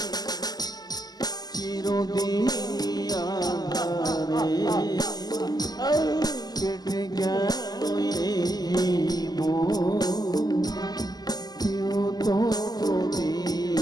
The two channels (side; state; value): right; late; 0.20 ms